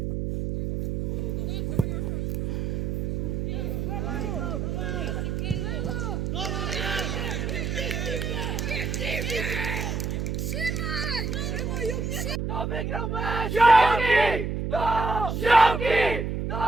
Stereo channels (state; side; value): noise; right; hum, 1 dB below the sound